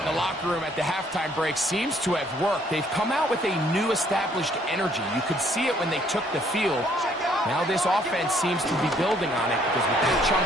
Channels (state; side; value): normal; both; correlation 0.64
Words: in the locker room at the halftime break seems to have worked. They've come out with a new established energy. You could see it when they took the field. Now this offense seems to be building on it because with that